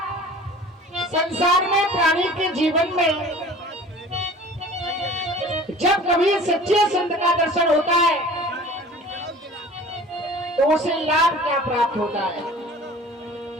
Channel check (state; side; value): normal; both; correlation 0.44